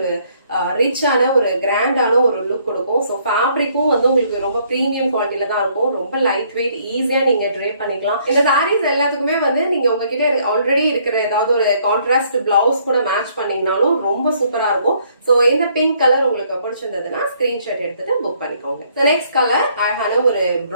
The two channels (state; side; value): inverted; both; correlation -0.66